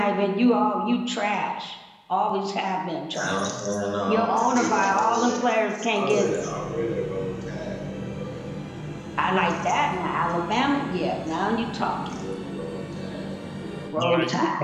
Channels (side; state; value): both; identical; correlation 1.00